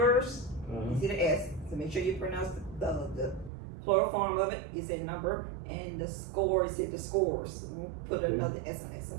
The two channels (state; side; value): drops out; left; at 3.5 s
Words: you see the S. So make sure you pronounce the plural form of it. You say number, and the score, you say the scores. We'll put another S on it. So